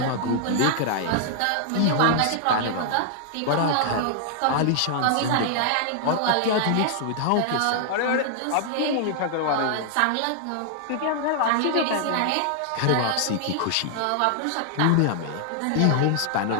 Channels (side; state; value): both; different; correlation -0.01